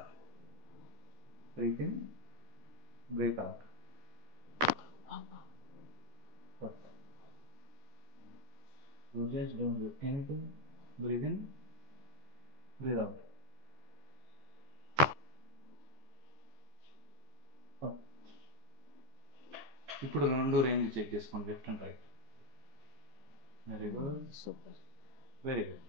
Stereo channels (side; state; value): left; late; 14 ms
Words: Breathe in, breathe out. Perfect. You just don't do anything. Breathe in, breathe out. ఇప్పుడు రెండు range check చేసుకోండి, left and right. Very good, super, very good.